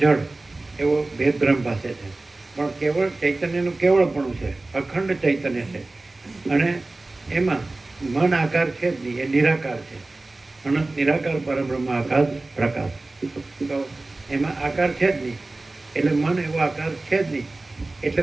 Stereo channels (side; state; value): left; quieter; 3.1 dB